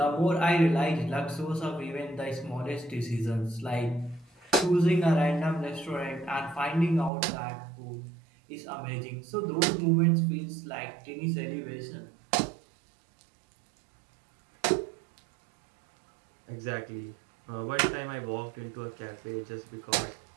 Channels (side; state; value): left; drops out; at 7.1 s